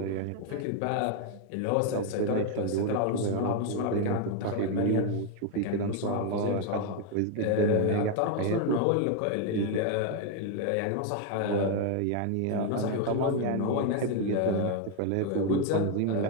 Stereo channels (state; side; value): different; both; correlation 0.01